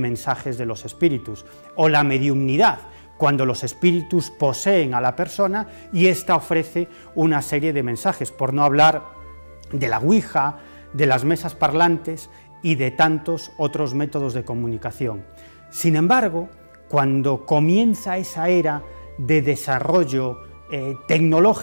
de los espíritus, o la mediumnidad, cuando los espíritus poseen a la persona y ésta ofrece una serie de mensajes, por no hablar de la ouija, de las mesas parlantes y de tantos otros métodos de comunicación. Sin embargo, cuando comienza esa era de desarrollo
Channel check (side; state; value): both; inverted; correlation -1.00